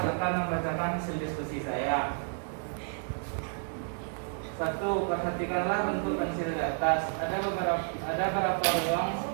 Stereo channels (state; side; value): silent; left; 57 dB below the other